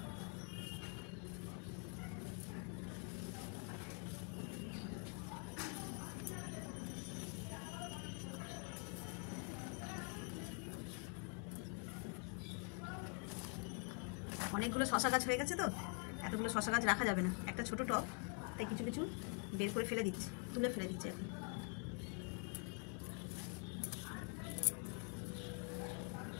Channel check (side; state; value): right; quieter; 35.6 dB